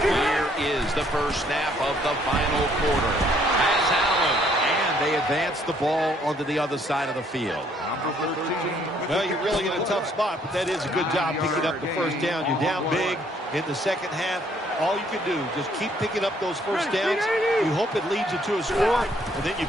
is the first snap of the final quarter. As Allen, and they advance the ball onto the other side of the field. Well, you're really in a tough spot, but that is a good job picking up the first down. You're down big in the second half. All you can do, just keep picking up those first downs. You hope it leads you to a score, and then you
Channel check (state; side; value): normal; both; correlation 0.65